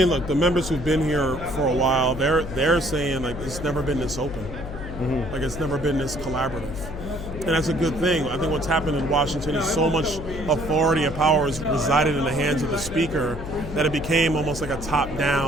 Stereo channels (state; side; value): noise; left; hum, 9 dB below the sound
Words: look, the members who've been here for a while, they're saying, like, it's never been this open. Mm-hmm. Like, it's never been this collaborative. And that's a good thing. I think what's happened in Washington is so much authority and power has resided in the hands of the speaker that it became almost like a